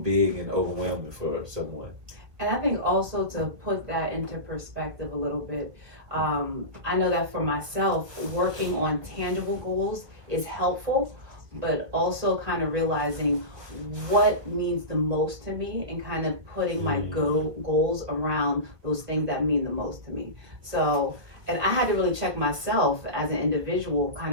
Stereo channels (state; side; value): late; left; 1.7 ms